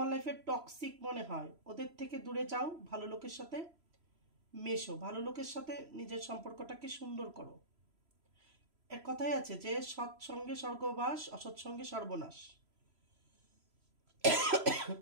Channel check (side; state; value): left; late; 3.0 ms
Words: লাইফে টক্সিক মনে হয়, ওদের থেকে দূরে যাও, ভালো লোকের সাথে মেশো, ভালো লোকের সাথে নিজের সম্পর্কটাকে সুন্দর করো। এক কথাই আছে যে সৎসঙ্গে স্বর্গবাস, অসৎসঙ্গে সর্বনাশ।